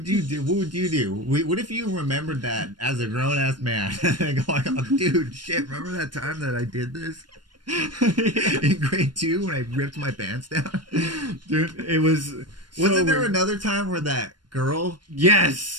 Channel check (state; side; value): late; left; 0.71 ms